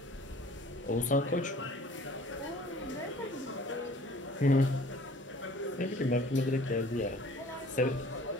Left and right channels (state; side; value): normal; both; correlation 0.50